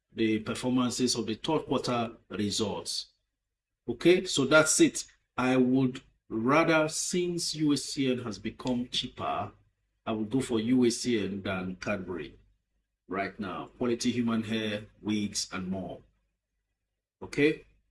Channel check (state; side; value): identical; both; correlation 1.00